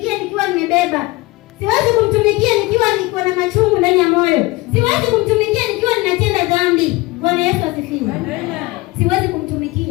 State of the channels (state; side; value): quieter; right; 21.7 dB